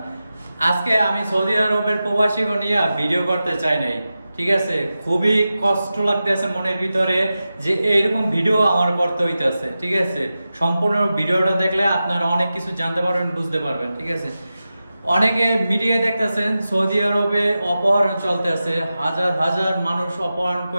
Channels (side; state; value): both; inverted; correlation -0.93